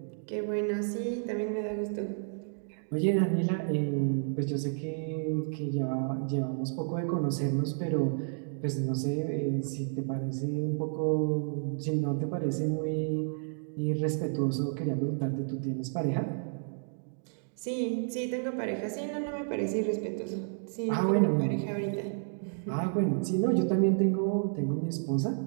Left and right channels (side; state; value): left; silent; digital silence